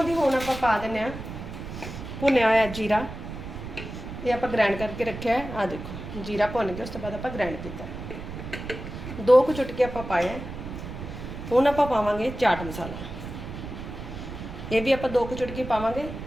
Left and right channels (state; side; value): noise; right; rumble, 9 dB below the sound